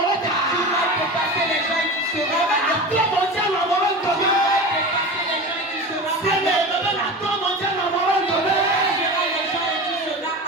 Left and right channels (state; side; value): normal; both; correlation 0.29